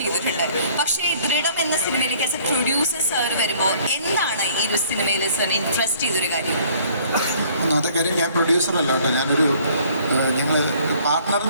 പക്ഷേ ദൃഢം എന്ന സിനിമയിലേക്ക് ആസ് എ പ്രൊഡ്യൂസർ സാർ വരുമ്പോൾ എന്താണ് ഈ ഒരു സിനിമയിൽ സാറിന് ഇൻട്രസ്റ്റ് ചെയ്തൊരു കാര്യം? ഒന്നാമത്തെ കാര്യം, ഞാൻ പ്രൊഡ്യൂസറല്ല കേട്ടോ, ഞാനൊരു ഞങ്ങൾ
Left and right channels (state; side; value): inverted; both; correlation -0.58